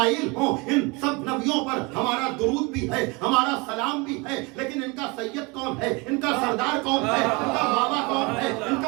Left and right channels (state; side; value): quieter; left; 27.4 dB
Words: ہو، ان سب نبیوں پر ہمارا درود بھی ہے، ہمارا سلام بھی ہے. لیکن ان کا سید کون ہے؟ ان کا سردار کون ہے؟ ان کا بابا کون ہے؟ ان